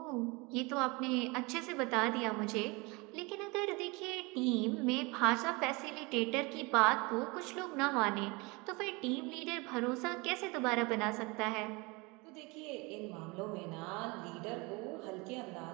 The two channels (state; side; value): quieter; left; 26.5 dB